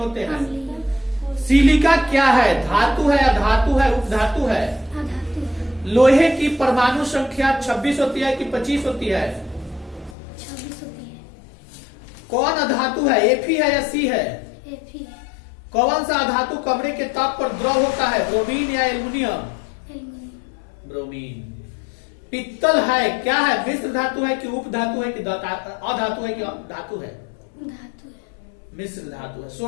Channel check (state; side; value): drops out; right; at 10.2 s